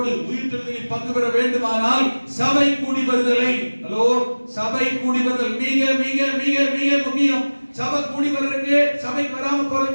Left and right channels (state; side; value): inverted; both; correlation -1.00